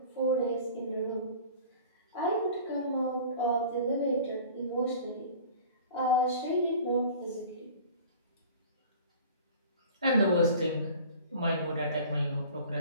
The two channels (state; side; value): inverted; both; correlation -0.43